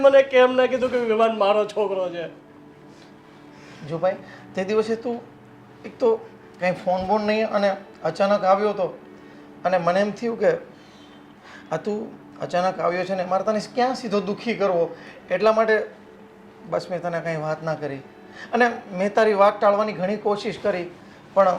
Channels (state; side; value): identical; both; correlation 1.00